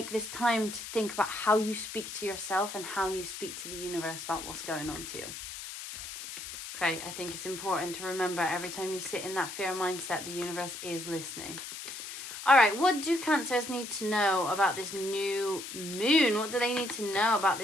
this time to think about how you speak to yourself and how you speak to the universe about what's going on to you. Okay, I think it's important to remember every time you sit in that fear mindset, the universe is listening. All right, what do Cancers need to know about this new moon? What do they need to know about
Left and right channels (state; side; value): noise; left; hiss, 9 dB below the sound